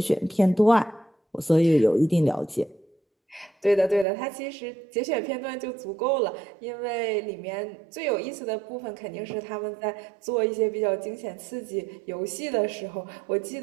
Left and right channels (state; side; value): drops out; left; at 4.0 s